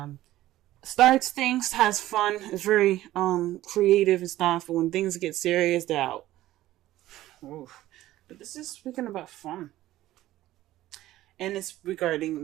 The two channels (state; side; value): quieter; left; 15.1 dB